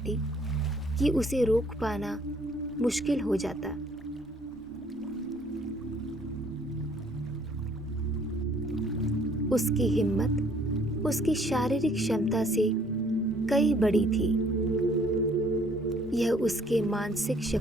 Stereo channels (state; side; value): normal; both; correlation 0.61